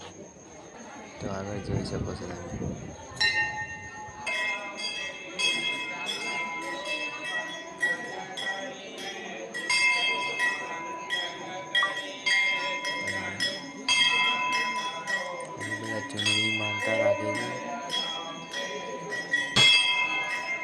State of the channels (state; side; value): identical; both; correlation 1.00